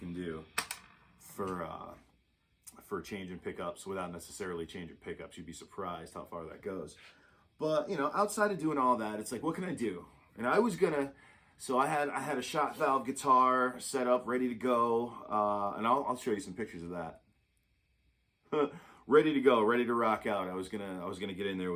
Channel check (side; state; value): both; identical; correlation 1.00